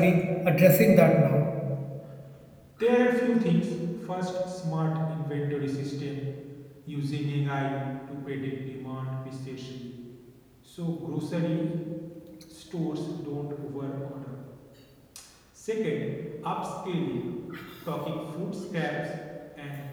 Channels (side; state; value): both; identical; correlation 1.00